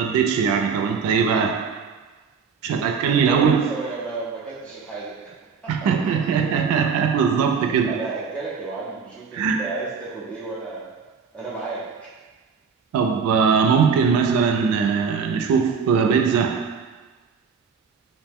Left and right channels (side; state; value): left; quieter; 5.8 dB